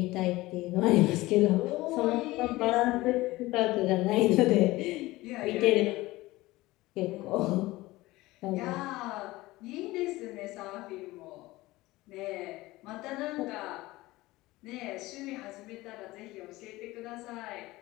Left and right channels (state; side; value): quieter; right; 19.1 dB